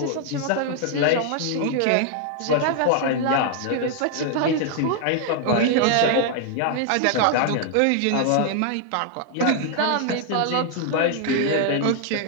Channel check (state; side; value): different; both; correlation 0.00